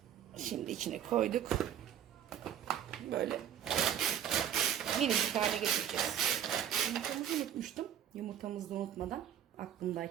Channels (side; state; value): left; quieter; 10.0 dB